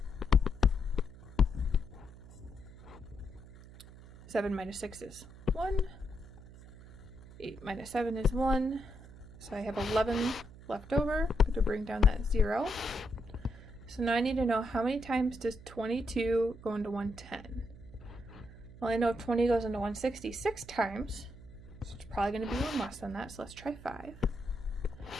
7 minus 6 is 1. 8 minus 7 is 1. So I have 11 left over. I'm going to bring down that 0. So now I need to know how many times does 22 go into 110? Well, I know 20 goes into 166 times. So it's probably going to be one less than that. So let's try 5.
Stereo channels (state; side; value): noise; right; hum, 18 dB below the sound